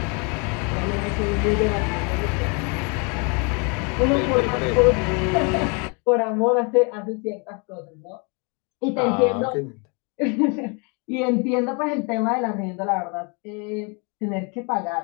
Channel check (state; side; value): quieter; right; 33.4 dB